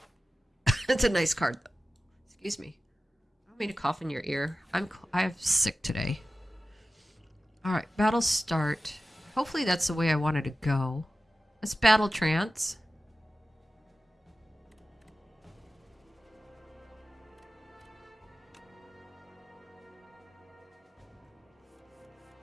It's a nice card, though. Excuse me. I don't mean to cough in your ear. I'm sick today. All right, battle start. Hopefully that's the way I wanted to go. Let's battle trance.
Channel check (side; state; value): both; normal; correlation 0.95